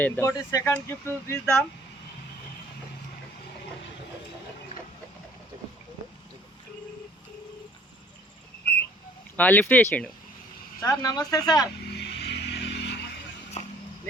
చేద్దాం. ఇంకోటి సెకండ్ గిఫ్ట్ తీద్దాం. లిఫ్ట్ చేసిండు. సార్ నమస్తే సార్.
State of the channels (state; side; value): normal; both; correlation 0.56